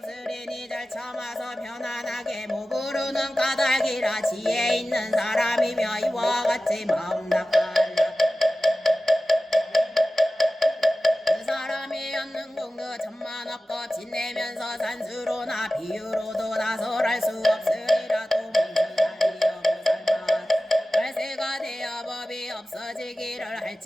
잘 참아서 편안하게 모부르는 까닭이라. 지혜 있는 사람이며 이와 같이 마음 닦아라. 그 사람이 얻는 공덕 천만억법 지내면서 산수로나 비유로도 나설할 수 없으리라. 또 문수다리여 보살만 발세가 되어 법이 없어지기를 할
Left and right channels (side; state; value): both; normal; correlation 0.95